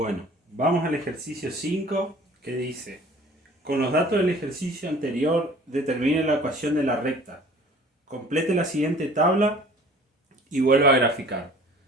vamos al ejercicio 5, que dice: con los datos del ejercicio anterior, determine la ecuación de la recta. Complete la siguiente tabla y vuelva a graficar.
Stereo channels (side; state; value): both; normal; correlation 0.49